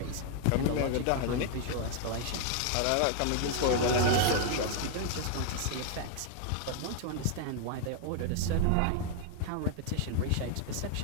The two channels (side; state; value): both; different; correlation 0.00